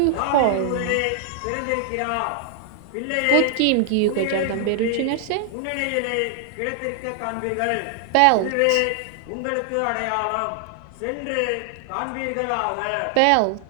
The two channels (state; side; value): different; both; correlation 0.00